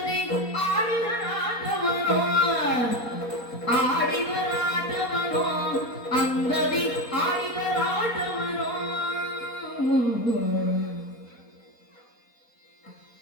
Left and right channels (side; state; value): right; late; 4.1 ms